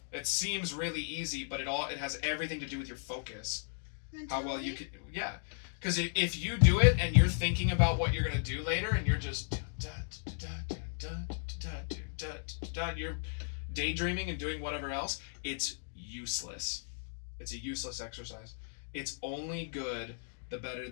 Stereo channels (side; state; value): right; silent; digital silence